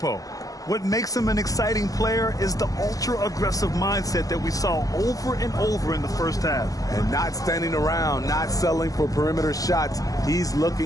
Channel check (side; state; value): right; late; 0.17 ms